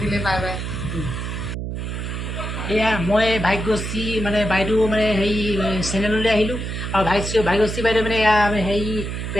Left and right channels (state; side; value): noise; right; hum, 5 dB below the sound